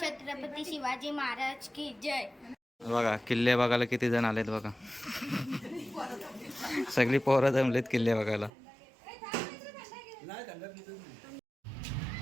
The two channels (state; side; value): drops out; left; at 8.5 s